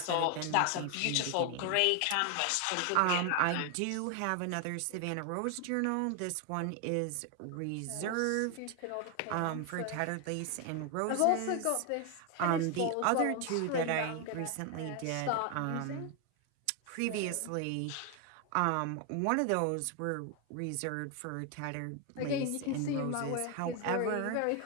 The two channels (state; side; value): different; both; correlation 0.01